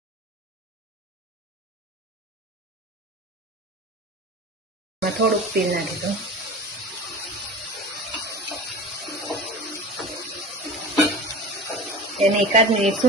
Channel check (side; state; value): both; normal; correlation 0.34